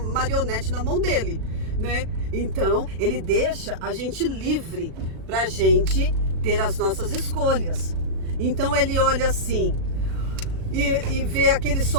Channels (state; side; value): late; left; 37 ms